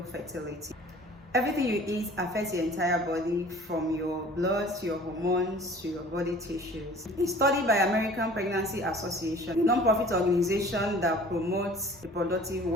fertility. Everything you eat affects your entire body, from your blood to your hormones to your body tissues. A study by American Pregnancy Association, a non-profit organization that promotes reproductive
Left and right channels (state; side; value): normal; both; correlation 0.48